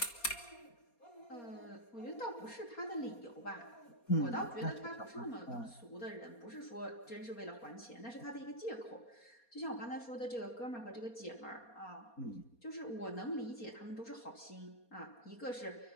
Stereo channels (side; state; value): right; late; 4.2 ms